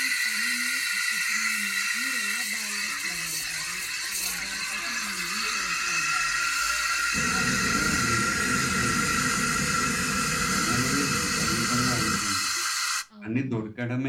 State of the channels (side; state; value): both; identical; correlation 1.00